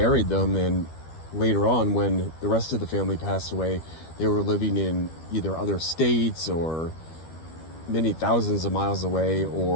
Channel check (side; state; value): right; late; 12 ms